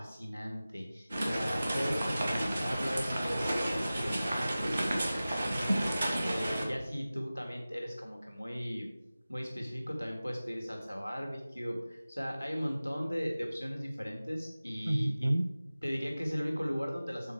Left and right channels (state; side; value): inverted; both; correlation -0.97